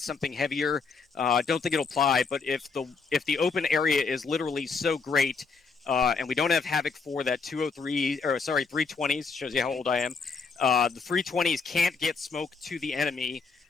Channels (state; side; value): quieter; right; 4.8 dB